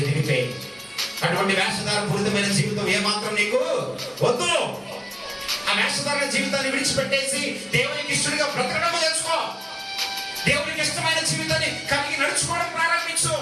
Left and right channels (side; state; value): both; identical; correlation 1.00